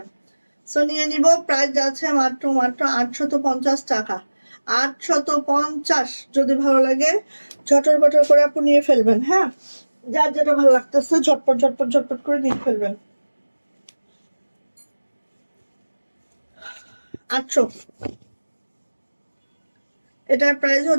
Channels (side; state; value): both; inverted; correlation -1.00